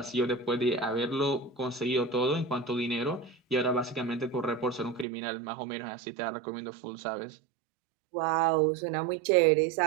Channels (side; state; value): left; drops out; at 5.1 s